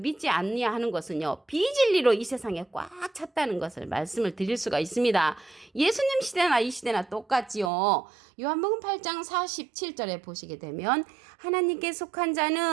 아니하는 것은요. 비진리로 이 세상에 꽉 찼다는 것을 말씀을 드릴 수가 있습니다. 예수님 시대나 이 시대나 똑같지요. 요한복음 8장 47절에 보시게 되면 하나님께 속한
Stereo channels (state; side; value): drops out; left; at 7.7 s